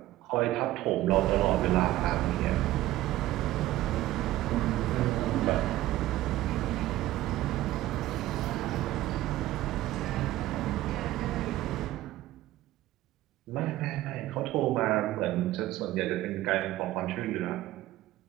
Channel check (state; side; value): quieter; left; 15.5 dB